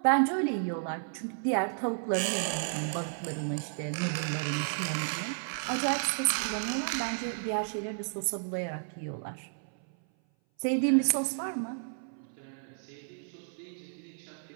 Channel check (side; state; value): left; silent; 56 dB below the other